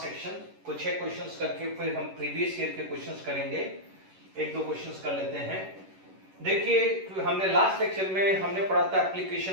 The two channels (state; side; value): late; left; 11 ms